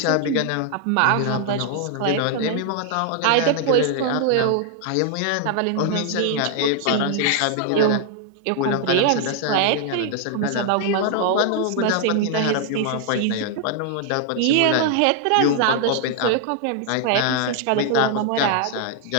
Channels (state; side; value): different; both; correlation 0.00